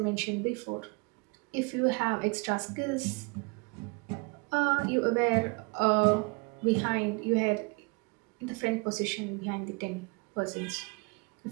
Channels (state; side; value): quieter; left; 29.7 dB